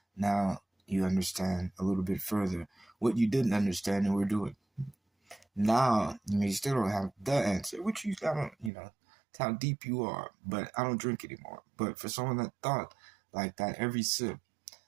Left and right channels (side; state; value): left; drops out; at 8.7 s